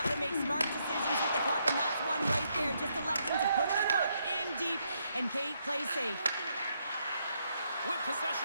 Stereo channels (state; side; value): inverted; both; correlation -0.76